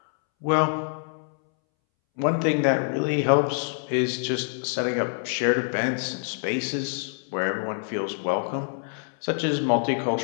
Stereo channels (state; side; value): silent; right; 61 dB below the other